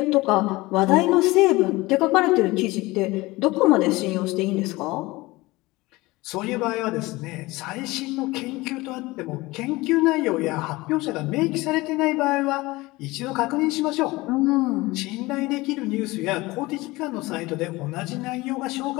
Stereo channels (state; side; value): quieter; right; 21.0 dB